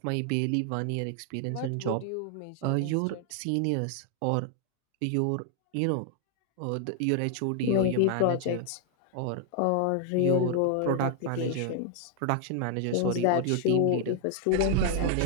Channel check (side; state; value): both; different; correlation 0.00